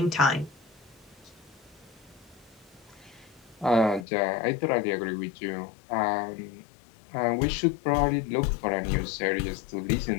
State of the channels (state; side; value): drops out; right; at 4.0 s